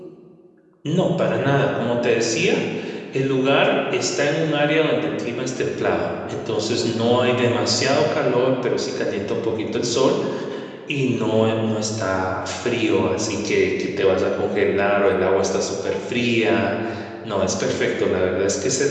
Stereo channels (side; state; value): both; identical; correlation 1.00